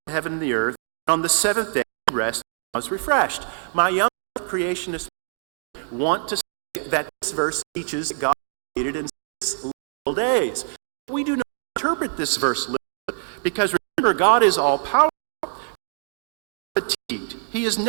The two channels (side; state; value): left; silent; digital silence